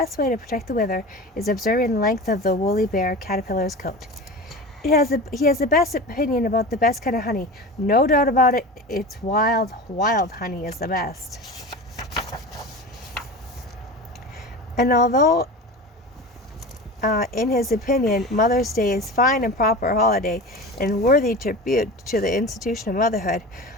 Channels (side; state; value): both; normal; correlation 0.31